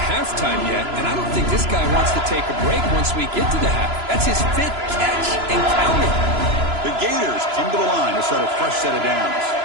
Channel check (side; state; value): left; late; 3.0 ms